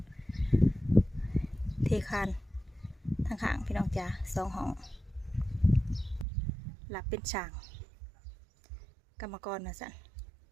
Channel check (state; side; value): drops out; left; at 6.2 s